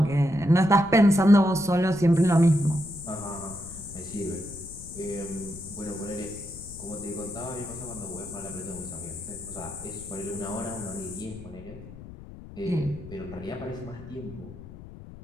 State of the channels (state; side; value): noise; left; rumble, 15 dB below the sound